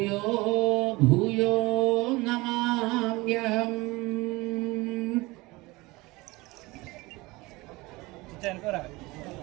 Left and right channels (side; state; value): left; quieter; 22.1 dB